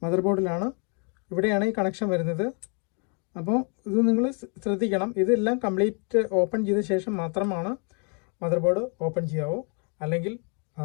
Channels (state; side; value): quieter; right; 38.2 dB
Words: മദർ ബോർഡിലാണ്. ഇവിടെയാണ് ഈ കണക്ഷൻ വരുന്നത്. അപ്പോൾ ഇത് നിങ്ങൾ ശ്രദ്ധിക്കണം. ഇതെല്ലാം കംപ്ലീറ്റ് ഓപ്പൺ ചെയ്ത ശേഷം മാത്രമാണ് മദർ ബോർഡ് ഓപ്പൺ ചെയ്യാവൂ. അല്ലെങ്കിൽ